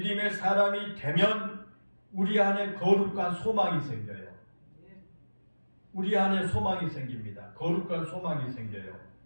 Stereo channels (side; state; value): both; inverted; correlation -1.00